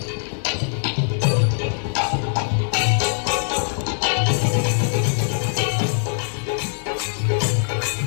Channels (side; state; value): right; silent; 64 dB below the other